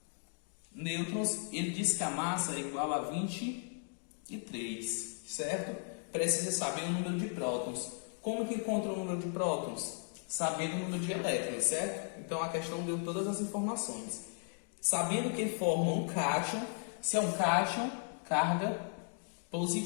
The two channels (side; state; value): right; silent; 54 dB below the other